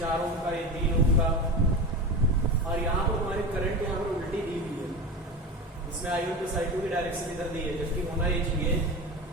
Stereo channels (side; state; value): both; normal; correlation 0.27